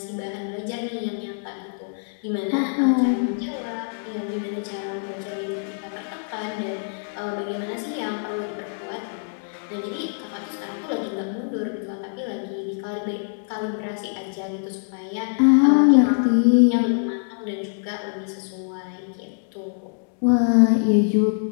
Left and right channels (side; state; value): right; silent; 62 dB below the other